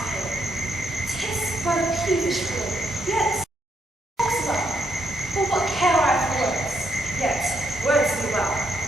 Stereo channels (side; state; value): both; normal; correlation 0.77